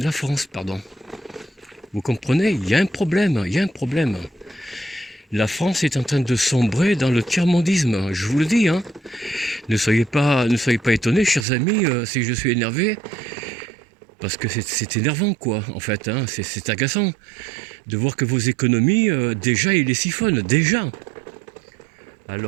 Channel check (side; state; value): left; drops out; at 11.5 s